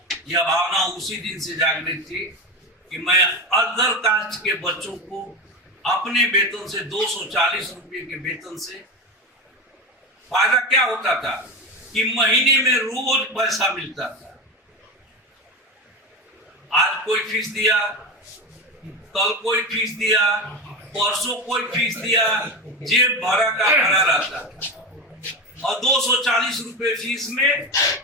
यह भावना उसी दिन से जागृत थी कि मैं अदर कास्ट के बच्चों को अपने वेतन से 240 रुपये के वेतन से फायदा क्या होता था कि महीने में रोज पैसा मिलता था। आज कोई फीस दिया, कल कोई फीस दिया, परसों कोई फीस दिया, जेब भरा का भरा रहता था। और 240 रुपये फीस में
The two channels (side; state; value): both; normal; correlation 0.21